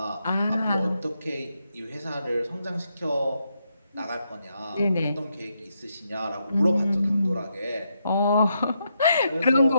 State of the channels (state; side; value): inverted; both; correlation -0.81